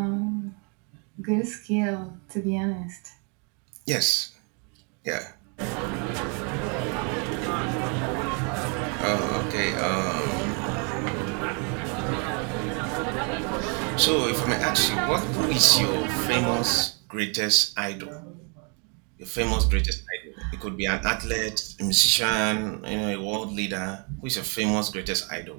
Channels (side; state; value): left; quieter; 36.3 dB